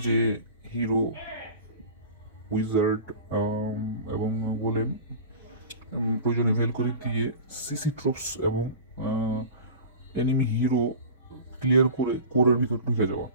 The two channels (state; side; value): inverted; both; correlation -0.35